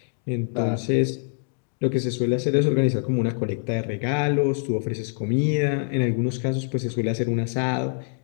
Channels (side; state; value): right; silent; digital silence